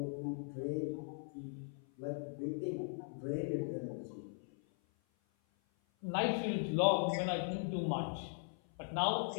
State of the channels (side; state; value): right; silent; 52 dB below the other